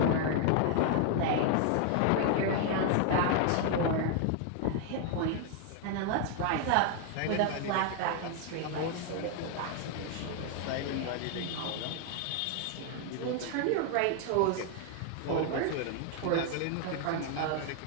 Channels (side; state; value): both; different; correlation 0.00